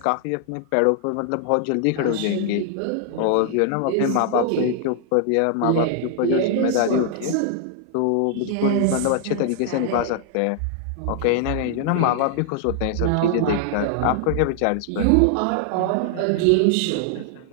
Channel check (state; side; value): different; both; correlation 0.00